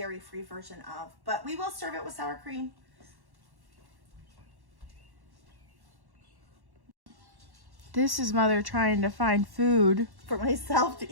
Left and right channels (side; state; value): left; late; 1.1 ms